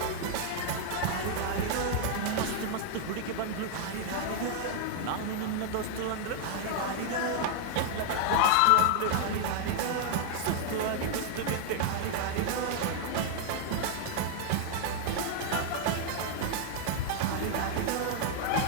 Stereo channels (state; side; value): different; both; correlation 0.00